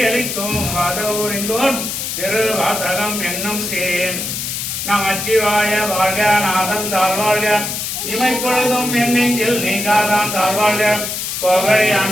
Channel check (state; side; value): noise; left; hiss, 4 dB below the sound